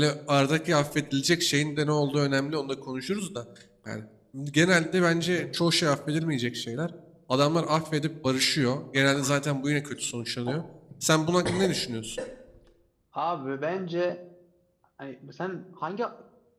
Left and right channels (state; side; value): identical; both; correlation 1.00